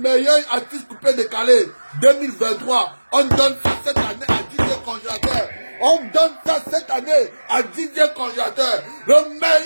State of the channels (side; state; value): both; inverted; correlation -1.00